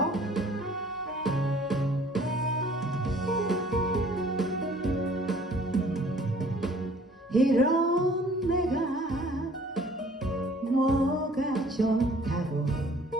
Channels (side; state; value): both; normal; correlation 0.54